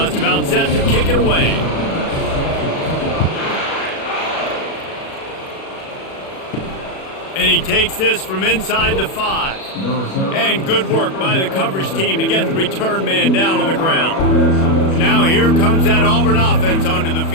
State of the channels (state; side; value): late; right; 37 ms